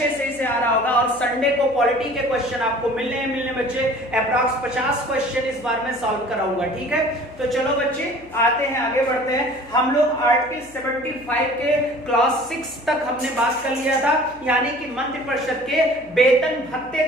से आ रहा होगा। और संडे को पॉलिटी के क्वेश्चन आपको मिलने बच्चे, अप्रॉक्स 50 क्वेश्चन इस बार मैं सॉल्व कराऊंगा, ठीक है। तो चलो बच्चे आते हैं, आगे बढ़ते हैं। हम लोग आर्टिकल 75 के क्लास 6 तक हमने बात कर लिया था, यानी कि मंत्रिपरिषद के वेतन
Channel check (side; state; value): left; noise; hum, 24 dB below the sound